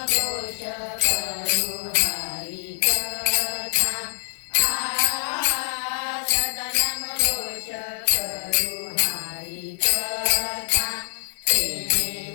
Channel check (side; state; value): right; silent; 62 dB below the other